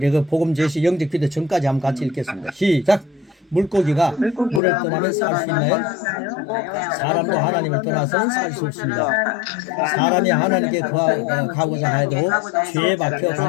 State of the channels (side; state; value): right; drops out; at 4.6 s